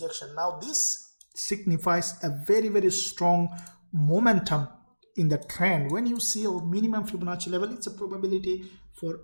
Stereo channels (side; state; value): both; inverted; correlation -1.00